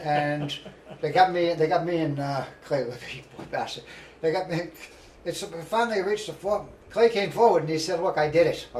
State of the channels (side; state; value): both; identical; correlation 1.00